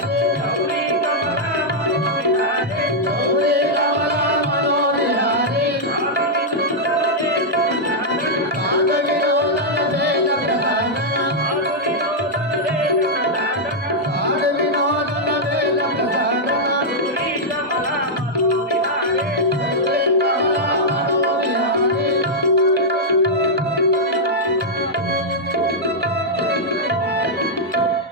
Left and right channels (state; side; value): normal; both; correlation -0.06